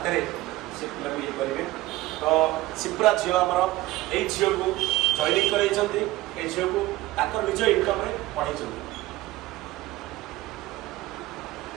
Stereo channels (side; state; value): left; quieter; 17.8 dB